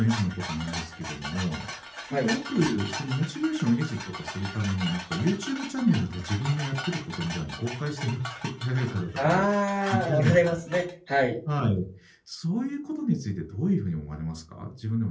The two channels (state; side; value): identical; both; correlation 1.00